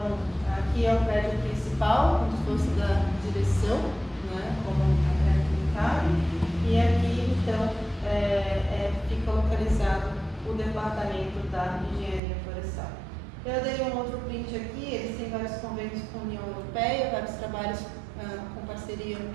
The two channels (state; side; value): drops out; left; at 12.2 s